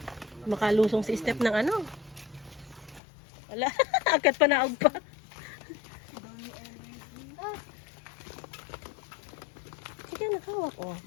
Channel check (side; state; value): right; drops out; at 3.0 s